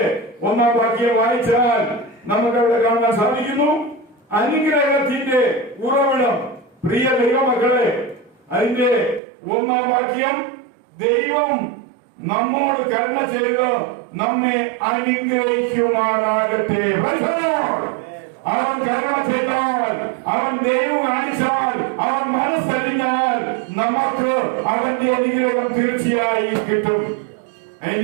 1-ാം വാക്യം വായിച്ചാൽ നമുക്ക് അവിടെ കാണാൻ സാധിക്കുന്നു. അനുഗ്രഹത്തിന്റെ ഉറവിടം. പ്രിയ ദൈവമക്കളെ, അതിന്റെ 1-ാം വാക്യം, ദൈവം നമ്മോട് കരുണ ചെയ്ത് നമ്മെ അനുഗ്രഹിക്കുമാറാകട്ടെ. അവൻ കരുണ ചെയ്താൽ, അവൻ ദൈവം കാണിച്ചാൽ, അവൻ മനസ്സറിഞ്ഞാൽ നമുക്ക് അവന്റെ അനുഗ്രഹം തീർച്ചയായും കിട്ടും.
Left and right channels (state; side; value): drops out; left; at 9.2 s